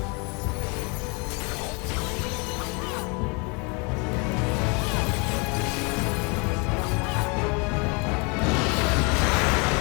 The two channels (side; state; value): right; quieter; 31.2 dB